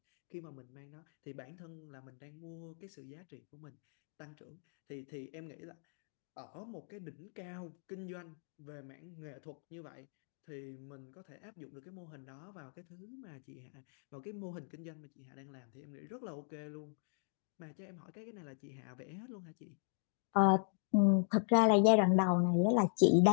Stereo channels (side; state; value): right; silent; digital silence